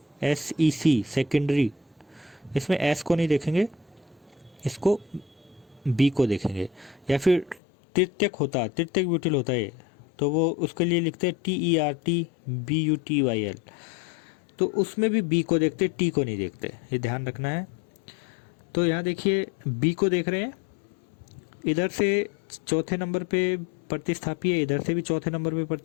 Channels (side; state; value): right; drops out; at 7.6 s